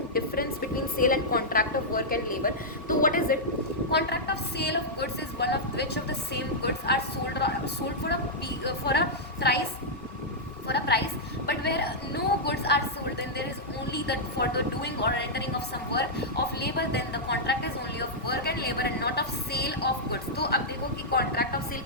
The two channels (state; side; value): normal; both; correlation -0.08